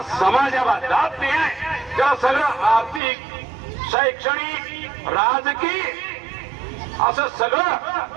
समाजाला जात निहाय त्या सगळं आर्थिक, शैक्षणिक, राजकीय असं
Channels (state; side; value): drops out; left; at 3.0 s